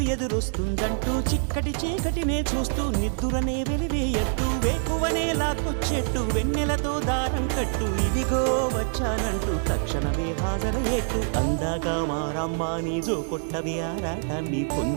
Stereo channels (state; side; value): silent; left; digital silence